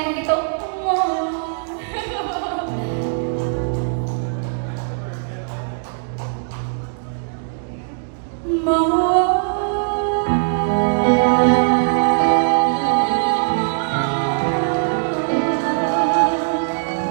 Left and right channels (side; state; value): left; silent; digital silence